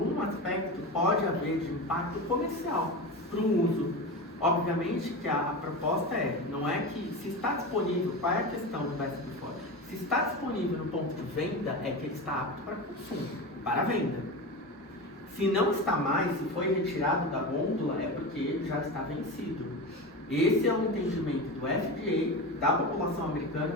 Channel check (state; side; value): normal; both; correlation 0.24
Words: aspecto pode haver de impacto comercial para o uso. Obviamente que a proposta não é que se está disponível, qual é a questão do best before? Se está disponível no ponto de venda, é que ele está apto para consumo, para venda. Se não está mais, se foi retirado da gôndola, é porque ele já está vencido. Esse é o entendimento do FDA, da população americana,